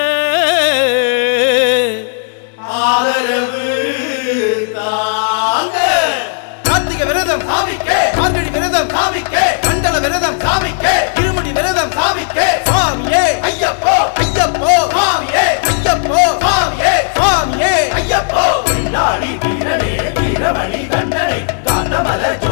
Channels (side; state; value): right; silent; digital silence